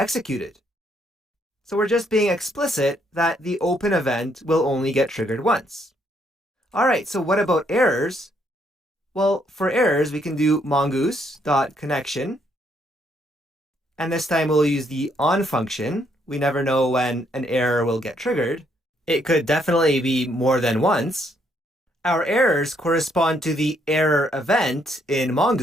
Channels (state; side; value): normal; both; correlation 0.71